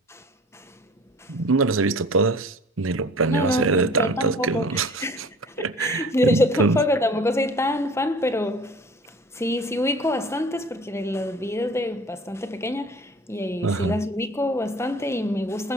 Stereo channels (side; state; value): both; normal; correlation 0.45